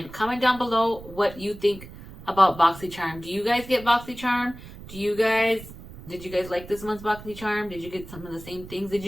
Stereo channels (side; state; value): right; noise; rumble, 16 dB below the sound